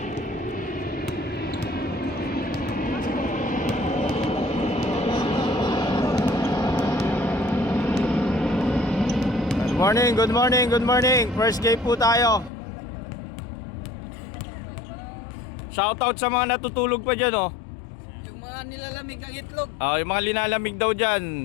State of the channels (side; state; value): right; drops out; at 12.5 s